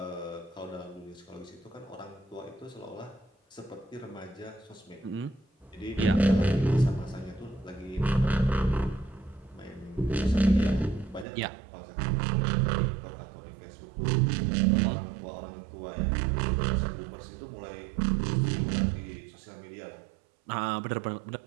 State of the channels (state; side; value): drops out; left; at 11.2 s